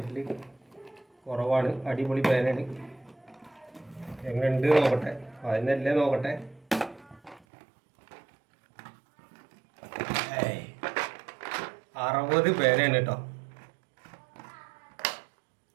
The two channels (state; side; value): drops out; left; at 7.4 s